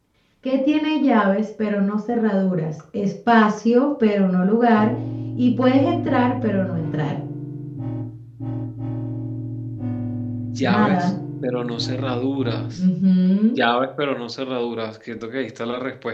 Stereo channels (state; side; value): identical; both; correlation 1.00